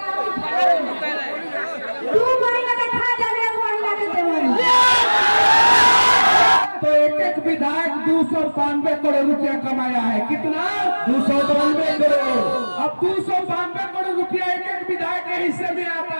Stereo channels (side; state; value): both; inverted; correlation -1.00